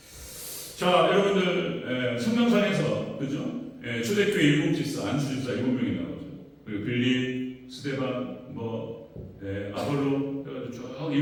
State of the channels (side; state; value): both; identical; correlation 1.00